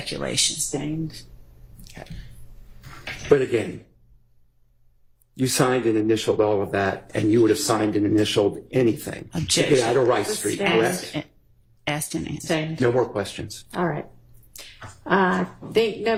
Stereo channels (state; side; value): identical; both; correlation 1.00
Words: Sustained. but again, you signed and initialed all of that, and you would have signed and initialed anything to Objection. get out of Rice Street, Sustained. correct? Asked and answered. Sustained. No more questions. All right. I think